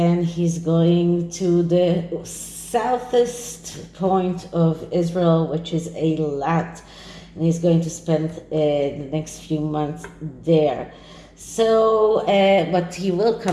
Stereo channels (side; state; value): both; identical; correlation 1.00